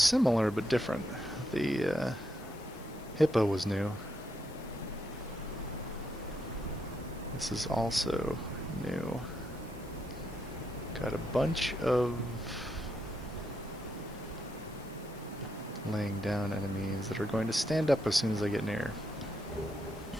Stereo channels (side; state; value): left; noise; hiss, 22 dB below the sound